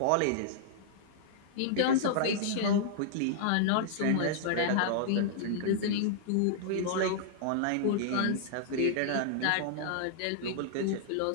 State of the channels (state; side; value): different; both; correlation -0.02